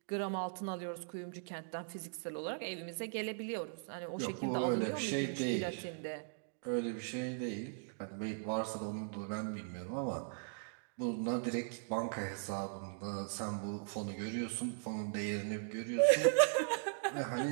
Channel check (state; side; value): silent; left; digital silence